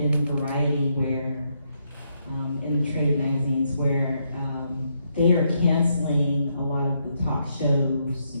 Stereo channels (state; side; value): inverted; both; correlation -0.78